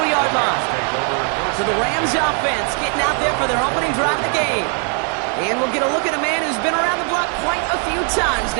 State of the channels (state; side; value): quieter; left; 39.8 dB